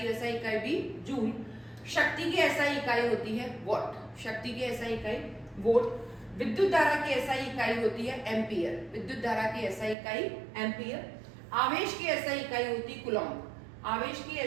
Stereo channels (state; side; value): drops out; left; at 10.0 s